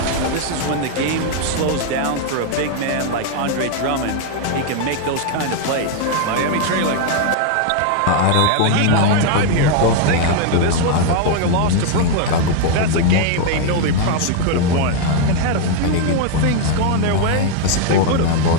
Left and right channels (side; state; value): both; different; correlation 0.00